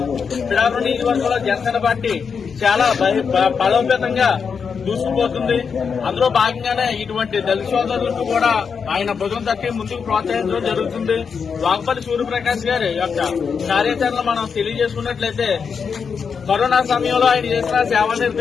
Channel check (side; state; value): right; quieter; 6.1 dB